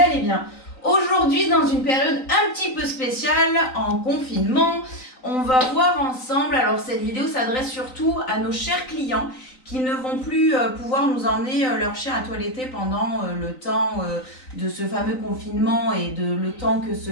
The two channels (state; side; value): late; right; 3.9 ms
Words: bien. Aujourd'hui, dans une période un petit peu spéciale, en confinement, on va voir ensemble, alors cette vidéo s'adresse surtout à nos chers clients qui ne vont plus pouvoir nous emmener leur chien à toiletter pendant le temps de ce fameux confinement et le temps que ce